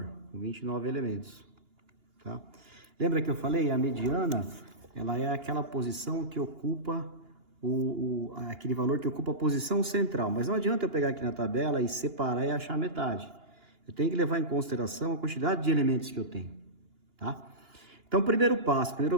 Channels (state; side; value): late; left; 2.8 ms